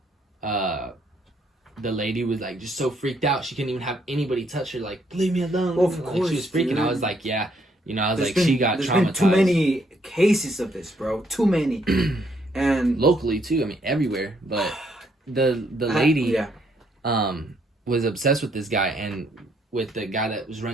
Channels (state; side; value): normal; both; correlation 0.71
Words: the lady was like just so freaked out she couldn't even have anybody touch her, like, leave me alone. Well, of like, course, she was freaking. dude. I was like, yeah, you know, I was There's like, been, she got there's traumatized. been too many cases of this, bro. Too many. And locally too, I mean everywhere, but the lady was obsessed with this guy and with the guy that was